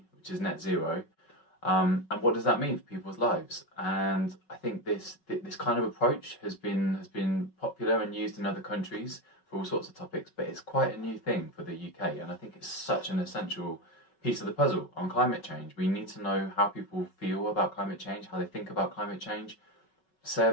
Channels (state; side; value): late; right; 5.4 ms